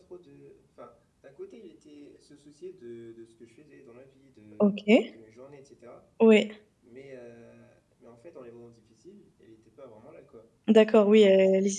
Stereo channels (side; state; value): both; identical; correlation 1.00